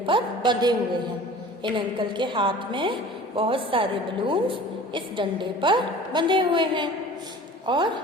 बंधे हुए हैं। इन अंकल के हाथ में बहुत सारे बलून इस डंडे पर बंधे हुए हैं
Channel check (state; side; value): normal; both; correlation 0.43